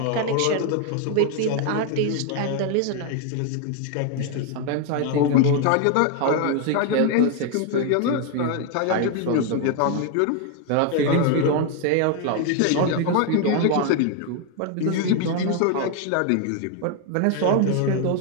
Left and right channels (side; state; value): both; different; correlation 0.01